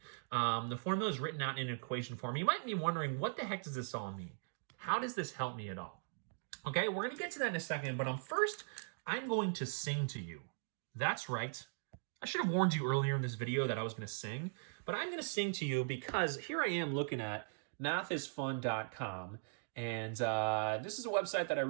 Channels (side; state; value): left; silent; digital silence